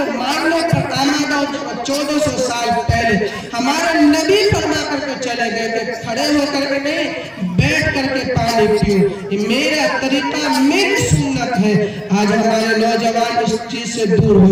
ماننے پر آمادہ ہو چکا. 1400 سال پہلے ہمارے نبی فرما کر کے چلے گئے کہ کھڑے ہو کر کے نہیں, بیٹھ کر کے پانی پیو. یہ میرا طریقہ, میری سنت ہے. آج ہمارے نوجوان اس چیز سے دور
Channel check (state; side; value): identical; both; correlation 1.00